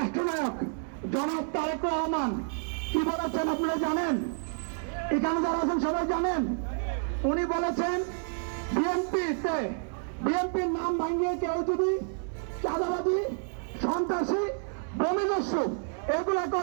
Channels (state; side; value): silent; left; 58 dB below the other